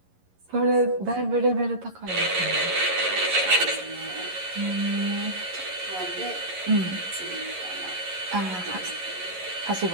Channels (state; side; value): late; left; 11 ms